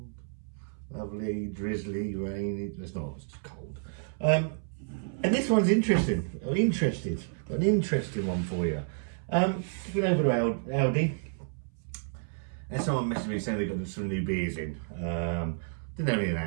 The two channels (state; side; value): silent; left; 58 dB below the other